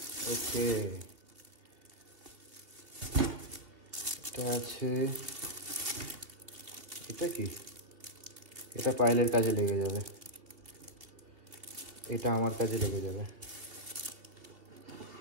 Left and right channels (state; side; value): late; left; 2.6 ms